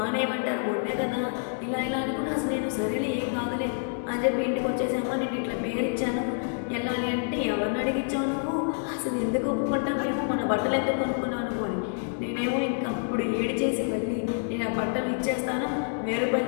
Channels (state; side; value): silent; right; digital silence